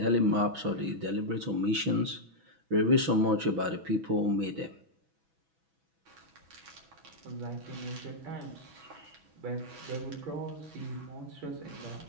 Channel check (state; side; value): late; left; 6.1 ms